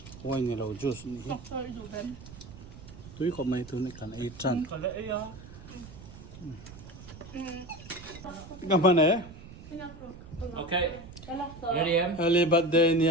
Wine ni lo juice ni. Tui ko mai tu ni kan ai chan. Gamane. Okay. Ready, em? Early birthday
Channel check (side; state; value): right; noise; rumble, 16 dB below the sound